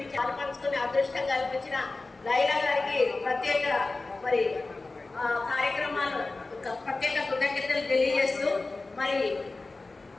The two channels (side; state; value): right; quieter; 3.4 dB